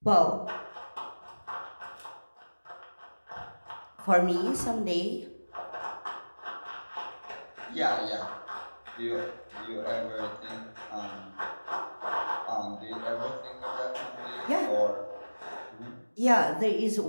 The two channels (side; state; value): both; inverted; correlation -1.00